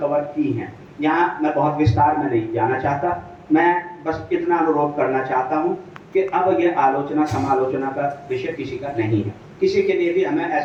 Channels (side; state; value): both; identical; correlation 1.00